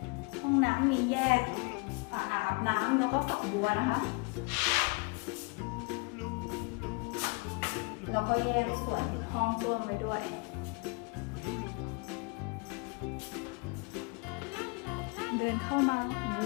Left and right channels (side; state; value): right; quieter; 31.6 dB